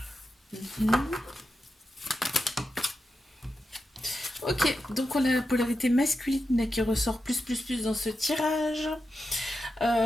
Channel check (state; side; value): normal; both; correlation 0.89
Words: Ok, donc on a la polarité masculine qui ressort plus dans ce tirage.